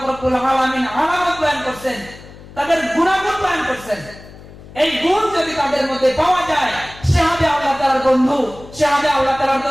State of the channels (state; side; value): noise; left; hum, 19 dB below the sound